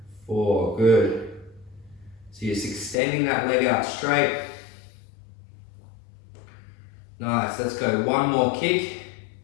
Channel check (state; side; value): drops out; right; at 3.0 s